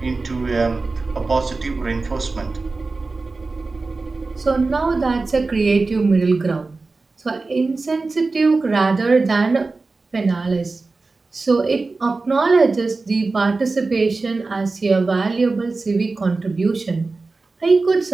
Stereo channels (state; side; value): quieter; left; 3.7 dB